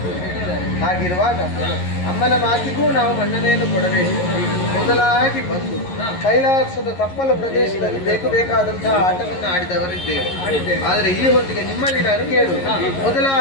ಹಾಗಿರುವಾಗ ಅಮ್ಮನ ಮಾತಿಗೂ ನಾವು ಮನ್ನಣೆಯನ್ನು ಕೊಡಬೇಕು. ಮೊದಲಾಗಿ ಬಂದು ಕೈಲಾಸದ ತಪ್ಪಲ ಪ್ರದೇಶದಲ್ಲಿ ಬೇಕಾದಂತಹ ಆಟವನ್ನು ಆಡಿದವರಿದ್ದೇವೆ. ಆದರೆ ಈ ಹೊತ್ತಿಗೆ ನಿಮ್ಮಲ್ಲಿ ನಾನು ಕೇಳು,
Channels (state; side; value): late; right; 11 ms